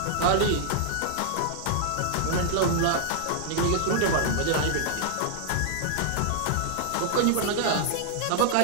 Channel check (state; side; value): different; both; correlation -0.01